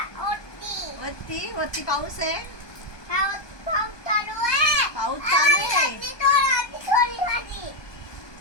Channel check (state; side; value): late; right; 1.2 ms